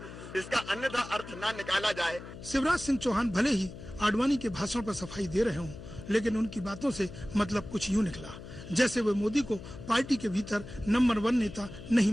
इसका अन्यथा अर्थ ना निकाला जाए। शिवराज सिंह चौहान भले ही आडवाणी के भाषण पर सफाई दे रहे हों, लेकिन उनकी बातों से मतलब कुछ यूं निकला जैसे वे मोदी को पार्टी के भीतर नंबर 1 नेता नहीं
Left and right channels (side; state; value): left; noise; hum, 13 dB below the sound